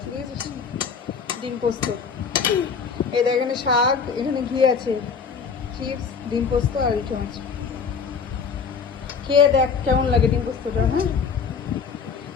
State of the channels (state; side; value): quieter; right; 5.9 dB